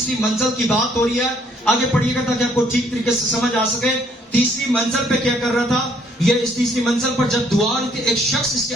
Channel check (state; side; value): normal; both; correlation 0.65